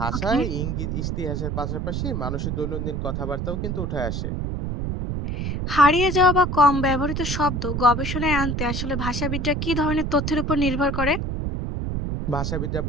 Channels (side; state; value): right; noise; rumble, 2 dB below the sound